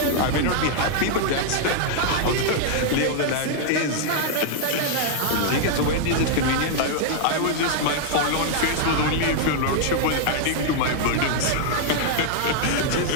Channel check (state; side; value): different; both; correlation -0.01